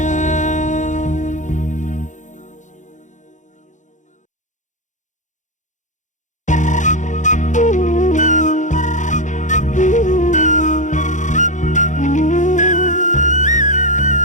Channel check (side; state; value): right; late; 0.36 ms